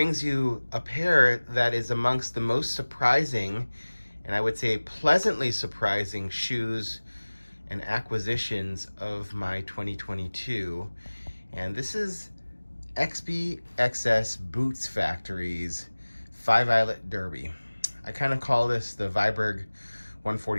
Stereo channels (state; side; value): inverted; both; correlation -1.00